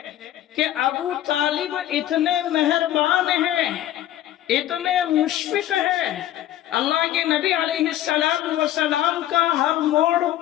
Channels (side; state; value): right; quieter; 12.8 dB